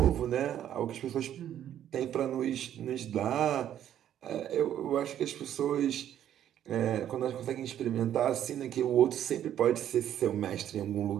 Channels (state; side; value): quieter; left; 10.7 dB